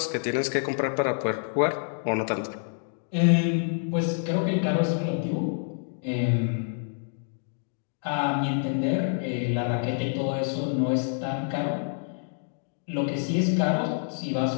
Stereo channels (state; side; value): silent; right; digital silence